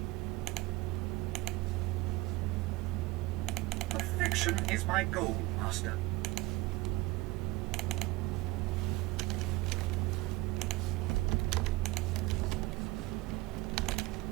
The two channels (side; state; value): left; quieter; 20.5 dB